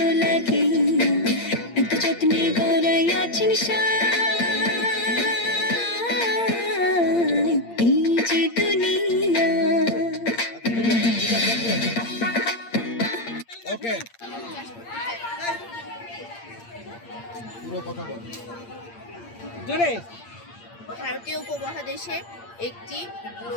লাগিয়া এত যত্নে গড়াই আছেন এই যে দুনিয়া। ওকে, পুরো কথা বল। জোরে। ভারতীয় উপমহাদেশে একটি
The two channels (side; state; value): right; late; 8.7 ms